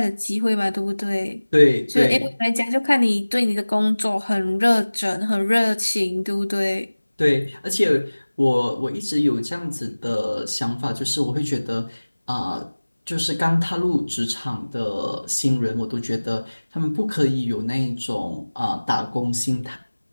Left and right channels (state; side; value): inverted; both; correlation -1.00